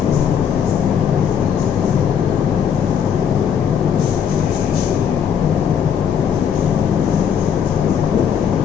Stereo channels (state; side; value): quieter; right; 7.9 dB